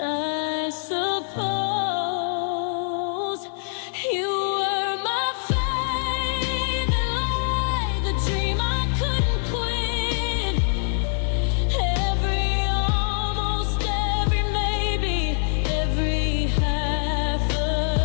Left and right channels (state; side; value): silent; right; 59 dB below the other